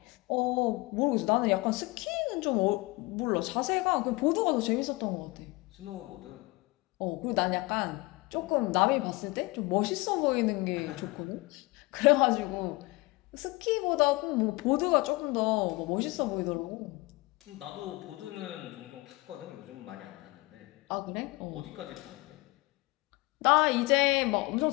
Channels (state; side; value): quieter; right; 23.2 dB